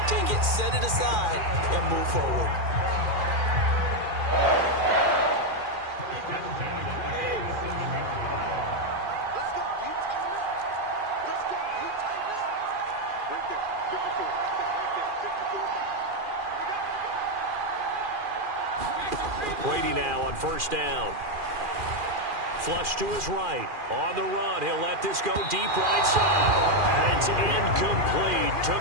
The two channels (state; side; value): late; left; 2.4 ms